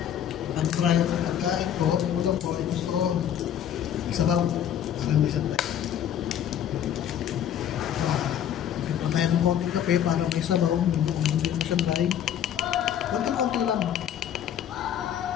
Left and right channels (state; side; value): quieter; right; 9.9 dB